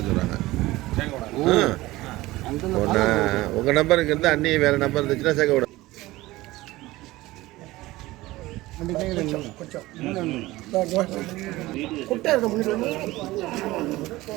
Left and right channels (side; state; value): left; quieter; 18.5 dB